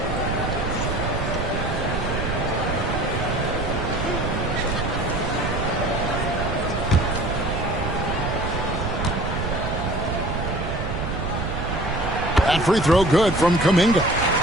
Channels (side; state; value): right; noise; rumble, 3 dB below the sound